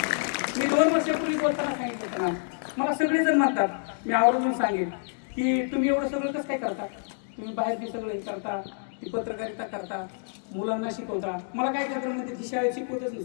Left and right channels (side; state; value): right; silent; digital silence